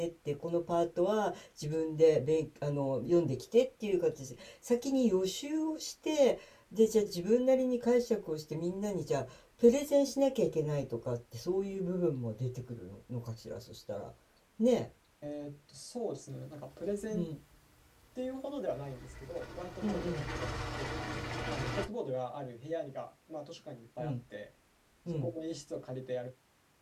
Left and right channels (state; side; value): identical; both; correlation 1.00